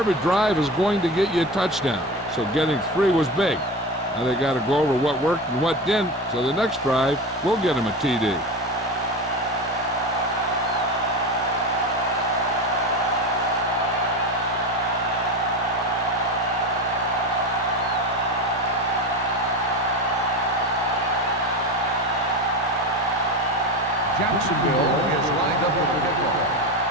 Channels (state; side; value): normal; both; correlation 0.24